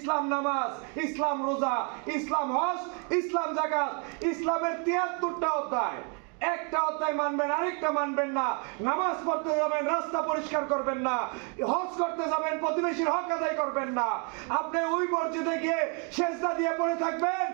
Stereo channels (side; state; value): left; quieter; 37.3 dB